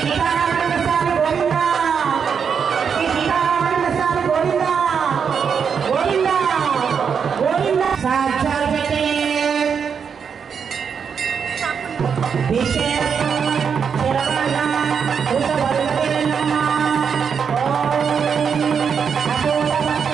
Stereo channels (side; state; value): left; quieter; 6.7 dB